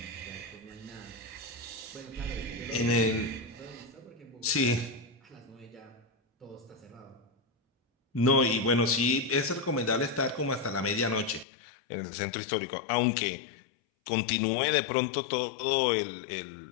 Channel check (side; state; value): right; drops out; at 11.5 s